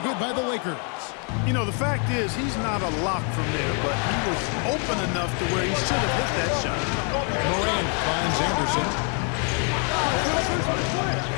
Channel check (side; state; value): right; quieter; 39.1 dB